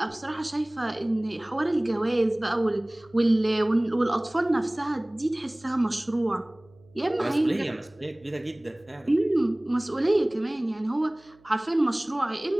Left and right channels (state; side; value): noise; right; hum, 29 dB below the sound